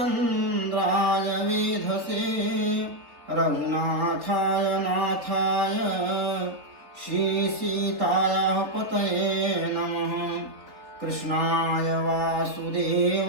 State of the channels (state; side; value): late; left; 3.7 ms